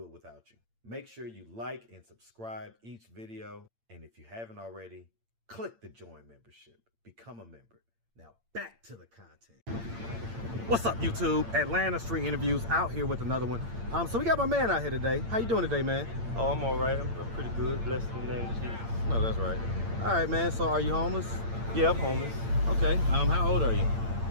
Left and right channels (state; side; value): late; left; 8.8 ms